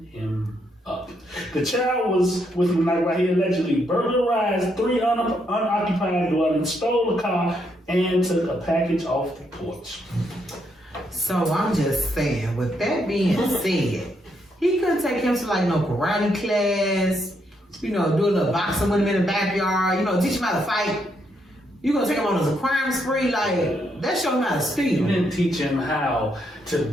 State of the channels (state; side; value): normal; both; correlation 0.76